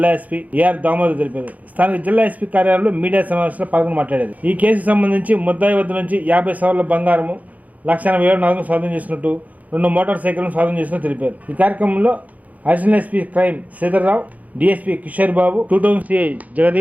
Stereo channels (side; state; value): left; late; 0.075 ms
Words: ఎస్పీ ఏఆర్ దామోదర్ తెలిపారు. స్థానిక జిల్లా ఎస్పీ కార్యాలయంలో మీడియా సమావేశంలో పాల్గొని మాట్లాడారు. ఈ కేసుకు సంబంధించి ముద్దాయి వద్ద నుంచి 50 సవర్ల బంగారము 1,80,000 నగదు స్వాధీనం చేసినట్టు 2 మోటార్ సైకిళ్లను స్వాధీనం చేసినట్టు తెలిపారు. ఈ కార్యక్రమంలో additional SP crime Sridhar Rao, DSP Kishore Babu, 2 town CI